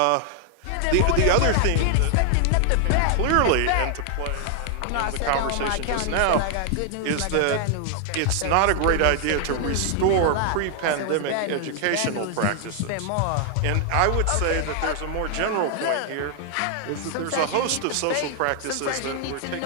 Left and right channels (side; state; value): both; different; correlation 0.00